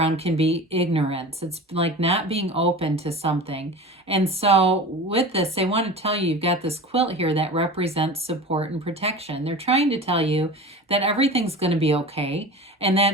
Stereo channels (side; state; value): both; normal; correlation 0.34